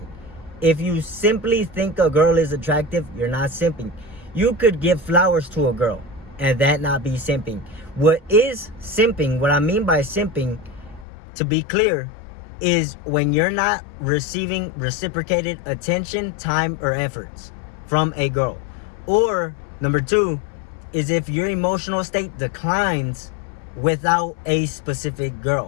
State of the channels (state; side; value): drops out; right; at 11.1 s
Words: If you simply think a girl is attractive, you're not simping. You could give flowers to a girl and that not be simping. What is simping, what I mean by simping, to be clear, is when you're not receiving reciprocated attention, time, or efforts from a girl. Or number two is if your emotional state declines without a specific